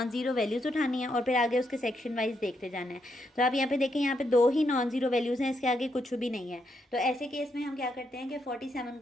ज़ीरो वैल्यूज़ उठानी है और फिर आगे उसके सेक्शन वाइज देखते जाना है। तो आप यहाँ पे देखें, यहाँ पे 2 ही नॉन ज़ीरो वैल्यूज़ हैं, इसके आगे कुछ भी नहीं है। तो ऐसे केस में हम क्या करते हैं कि 47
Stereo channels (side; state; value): both; normal; correlation 0.79